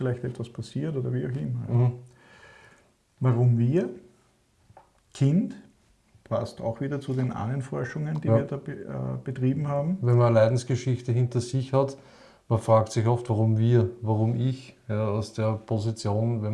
etwas passiert oder wie auch immer. Ja. Warum wir? Kind, passt auch wieder zu den Ahnenforschungen, die Ja. wir da betrieben haben. Wenn man eine Leidensgeschichte hinter sich hat, man fragt sich oft, warum wir, warum ich, ja, aus der Position, wenn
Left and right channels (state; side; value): identical; both; correlation 1.00